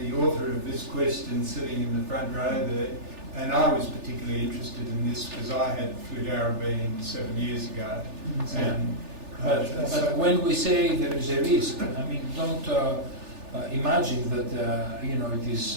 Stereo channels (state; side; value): late; left; 3.4 ms